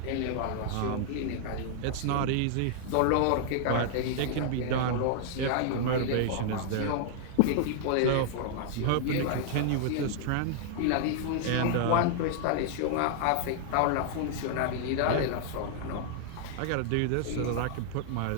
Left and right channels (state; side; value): different; both; correlation -0.01